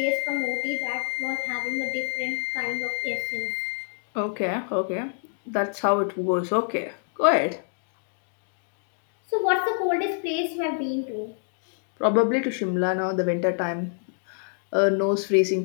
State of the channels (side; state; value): right; silent; 60 dB below the other